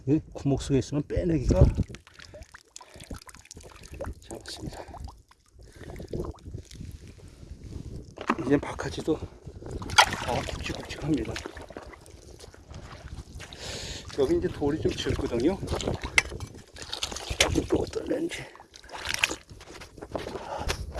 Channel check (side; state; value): both; identical; correlation 1.00